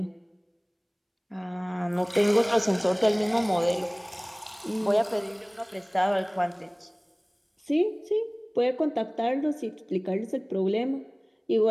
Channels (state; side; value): identical; both; correlation 1.00